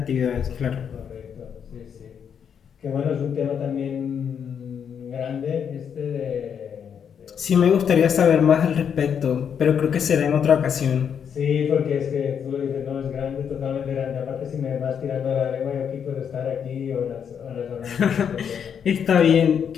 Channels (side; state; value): right; quieter; 7.7 dB